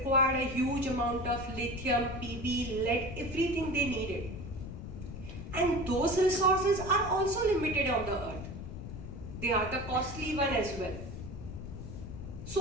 a huge amount of lithium, PB, lead, everything they needed. And those resources are also limited on the earth. They are the costly one as well.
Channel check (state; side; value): noise; left; rumble, 9 dB below the sound